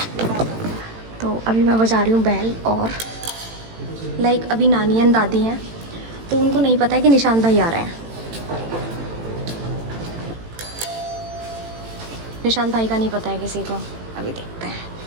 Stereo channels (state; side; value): late; left; 18 ms